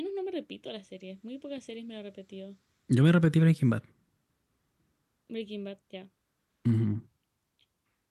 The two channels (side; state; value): both; identical; correlation 1.00